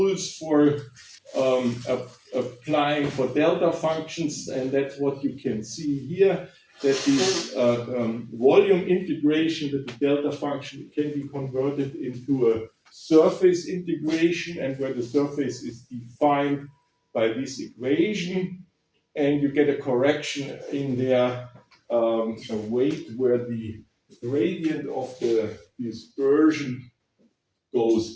for applying for delta functions, and that's what you can see here, that this volume integration with the delta function can be converted into a surface integration, and where the surface is defined by this equation, and you get a correction in there, a weight where the gradient of the dispersion goes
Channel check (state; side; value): identical; both; correlation 1.00